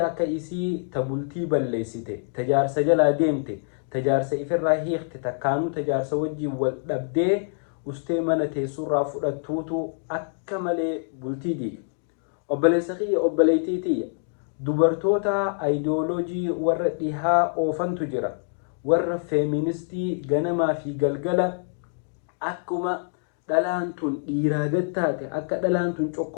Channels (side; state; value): right; silent; digital silence